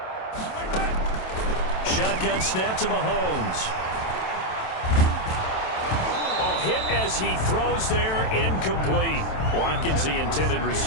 Shotgun snap to Mahomes. Oh, hit as he throws there, incomplete. Watkins, the intended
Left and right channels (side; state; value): right; late; 27 ms